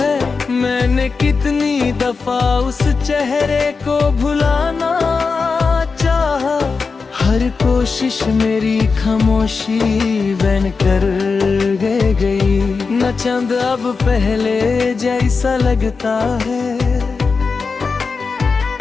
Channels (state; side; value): quieter; right; 4.7 dB